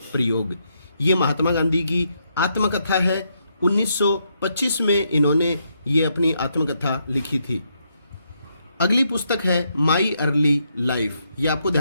प्रयोग। ये महात्मा गांधी की आत्मकथा है। 1925 में इन्होंने ये अपनी आत्मकथा लिखी थी। अगली पुस्तक है माई अर्ली लाइफ, ये आपको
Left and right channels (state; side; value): inverted; both; correlation -0.78